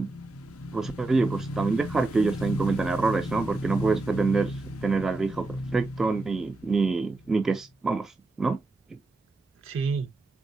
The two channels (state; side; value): quieter; left; 3.2 dB